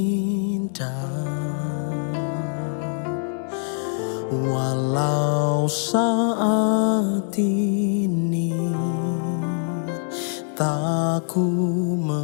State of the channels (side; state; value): right; silent; digital silence